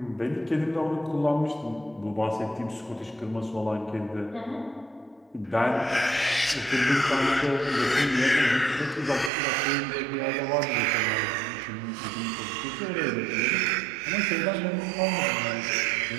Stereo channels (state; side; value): drops out; left; at 9.3 s